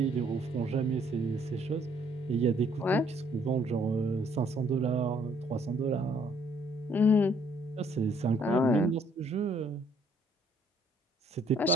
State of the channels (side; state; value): both; normal; correlation 0.65